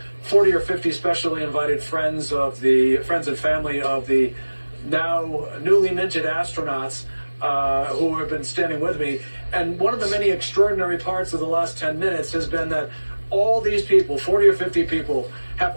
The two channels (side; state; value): both; inverted; correlation -1.00